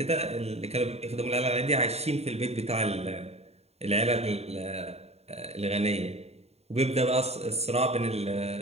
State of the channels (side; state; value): left; late; 0.30 ms